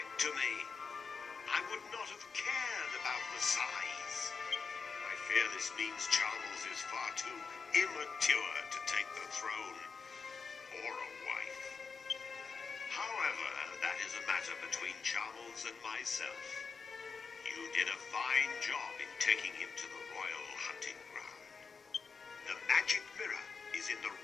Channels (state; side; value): quieter; right; 5.1 dB